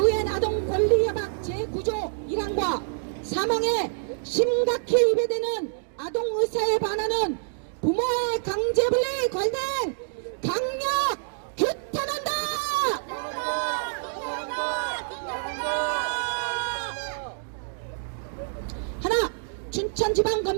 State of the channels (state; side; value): silent; left; digital silence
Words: 아동 권리 협약 제9조 1항과 사망에 심각히 위배되는 아동 의사에 반하는 부모의 강제 분리 관행 강력 규탄한다. 하나,